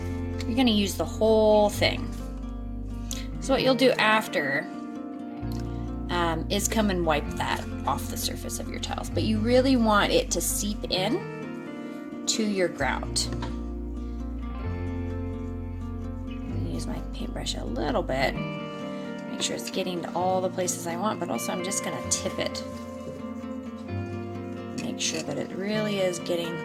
to use the whole thing. So what you'll do after is come and wipe that off the surface of your tiles, but you really want it to seep in to your grout. I'm going to use my paintbrush a little bit, make sure it's getting to all the places I want, but also I'm just going to tip it. Make sure that it really is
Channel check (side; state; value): both; identical; correlation 1.00